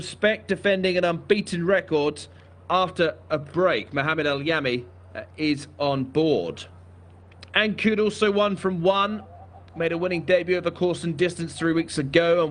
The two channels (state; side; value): identical; both; correlation 1.00